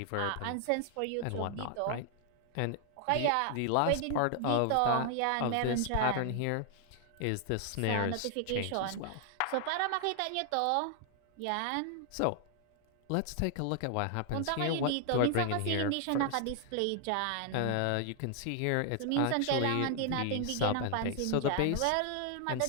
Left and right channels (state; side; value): different; both; correlation 0.00